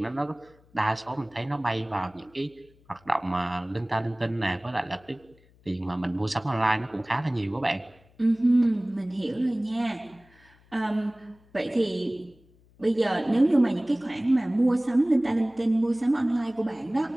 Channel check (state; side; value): noise; left; hum, 30 dB below the sound